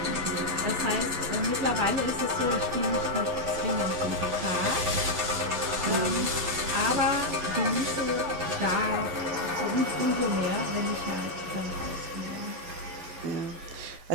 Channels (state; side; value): late; left; 12 ms